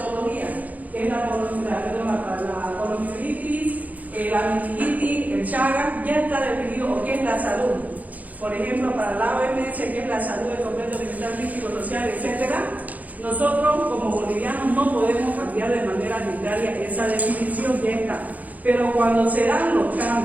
que es la poliomielitis, la meningitis, el Chagas, ya está definido o qué es la salud. Por ejemplo, para la OMS, que es la salud del completo mental, físico, social, etc., nosotros como bolivianos no podemos cambiar de manera arbitraria esa definición, ya está. Pero cuando se dan los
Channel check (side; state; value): left; late; 0.078 ms